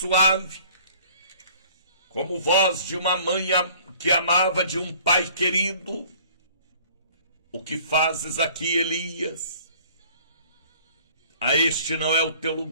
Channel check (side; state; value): both; inverted; correlation -0.53